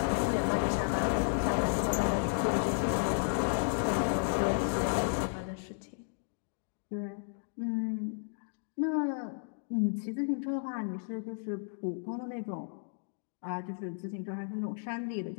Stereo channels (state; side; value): silent; right; digital silence